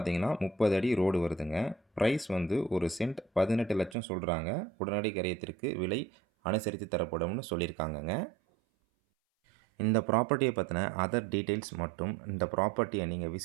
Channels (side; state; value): left; drops out; at 4.0 s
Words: 30 அடி ரோடு வருதுங்க. ப்ரைஸ் வந்து ஒரு சென்ட் 18 லட்சம் சொல்கிறாங்க. உடனடி கரையத்திற்கு விலை அனுசரித்து தரப்படும்னு சொல்லியிருக்காங்கங்க. இந்த ப்ராப்பர்ட்டியை பற்றின அதர் டீட்டெயில்ஸ் மற்றும் இந்த ப்ராப்பர்ட்டியை நீங்கள்